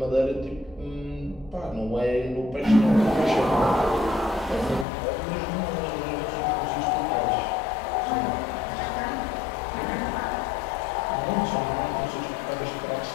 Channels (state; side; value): drops out; right; at 4.9 s